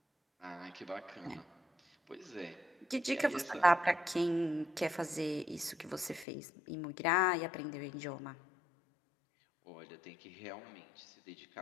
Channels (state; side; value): drops out; right; at 6.2 s